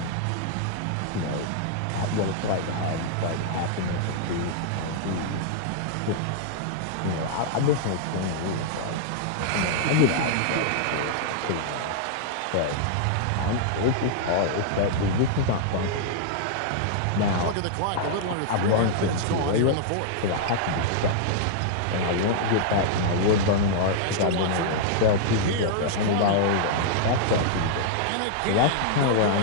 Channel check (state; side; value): different; both; correlation -0.01